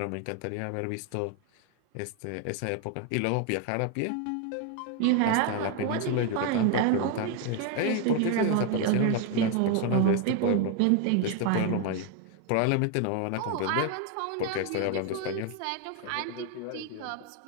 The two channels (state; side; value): different; both; correlation 0.01